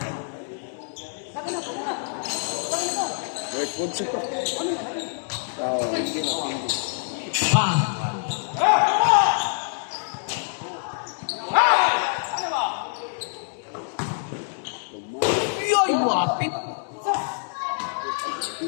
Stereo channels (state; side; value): silent; right; 61 dB below the other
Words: Wait, punso. Tao, hindi na pindi. Yoy, wapit.